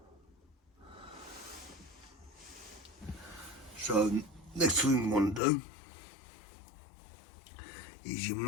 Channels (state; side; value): drops out; right; at 5.4 s